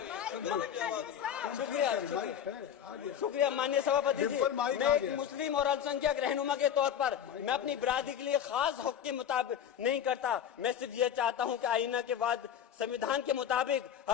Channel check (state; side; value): quieter; right; 9.1 dB